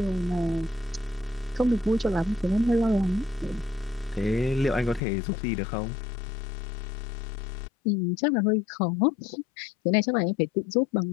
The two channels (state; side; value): drops out; right; at 5.0 s